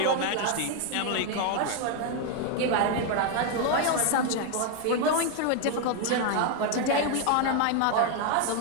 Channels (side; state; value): both; different; correlation 0.01